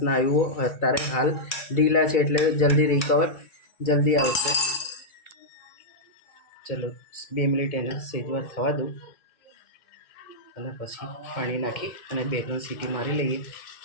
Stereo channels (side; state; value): right; late; 2.3 ms